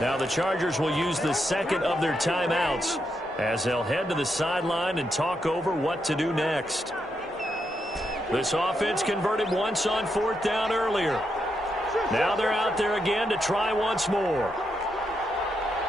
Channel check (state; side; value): normal; both; correlation 0.82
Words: Now the Chargers will use the second of their timeouts as they'll head to the sideline and talk over what to do next. This offense converted once on 4th down earlier. Now they're out there again to try once more.